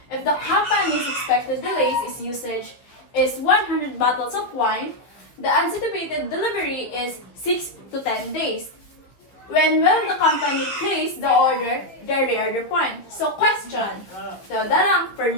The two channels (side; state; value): right; late; 15 ms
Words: if the company's expected delays is usage is 100 bottles of wine, the anticipated delivery is 6 to 10 days. When will the company place the order, the reorder point? So question. So, darang